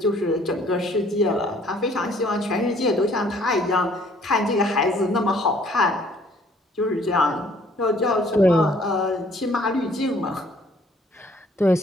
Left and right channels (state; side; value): normal; both; correlation 0.60